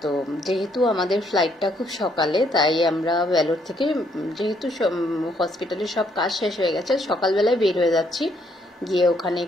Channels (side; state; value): both; normal; correlation 0.70